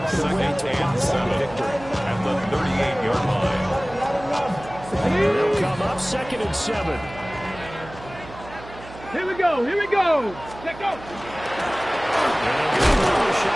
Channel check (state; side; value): noise; right; hum, 16 dB below the sound